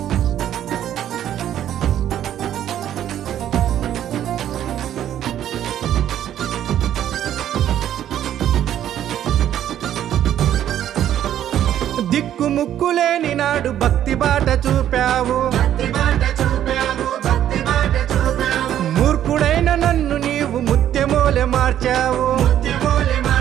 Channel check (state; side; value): quieter; left; 11.1 dB